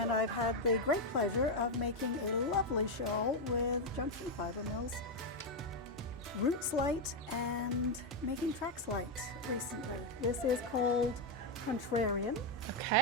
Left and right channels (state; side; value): normal; both; correlation 0.03